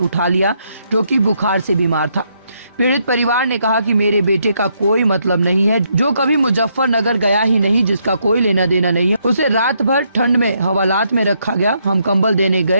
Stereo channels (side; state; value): both; inverted; correlation -0.75